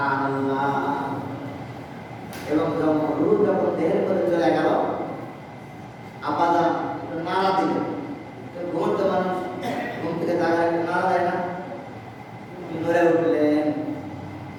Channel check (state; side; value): identical; both; correlation 1.00